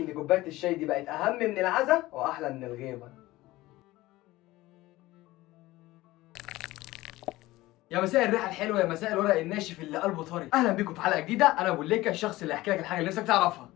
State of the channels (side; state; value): right; quieter; 18.1 dB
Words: كوبايه الشاي دي بقت اهم من العزا واحلى من الغيبه. يا مساء الريحه الحلوه، يا مساء الورق الناشف اللي قلبه طري. اهلا بيكم في حلقه جديده. انا ابو ليكا، الشخص اللي هيحكي لك الحاجه اللي نفسك تعرفها.